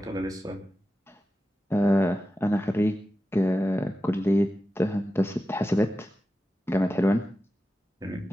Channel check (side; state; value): both; normal; correlation 0.93